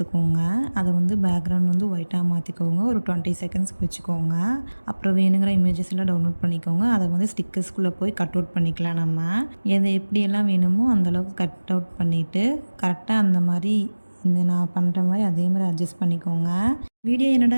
அதை வந்து பேக்ரவுண்ட் வந்து ஒயிட்டாக மாற்றிக்கோங்க, ஒரு 20 செகண்ட்ஸ்க்கு வச்சுக்கோங்க. அப்புறம் வேணுங்கிற இமேஜஸ் எல்லாம் டவுன்லோட் பண்ணிக்கோங்க. அதை வந்து ஸ்டிக்கர்ஸ்குள்ளே போய் கட் அவுட் பண்ணிக்கலாம். நம்ம எதை எப்படியெல்லாம் வேணுமோ அந்தளவுக்கு கட் அவுட் பண்ணிவிட்டு கரெக்டாக அந்த மாதிரி இந்த நான் பண்ணுற மாதிரி அதே மாதிரி அட்ஜஸ்ட் பண்ணிக்கோங்க. வீடியோ என்னடா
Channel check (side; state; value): both; inverted; correlation -1.00